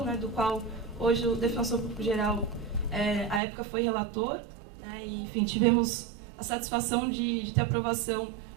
né, do qual hoje o Defensor Público Geral, à época, foi relator, né, e, enfim, tivemos a satisfação de ter aprovação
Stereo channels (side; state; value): left; drops out; at 3.4 s